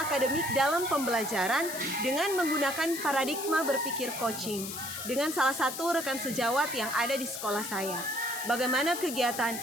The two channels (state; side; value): noise; left; hiss, 7 dB below the sound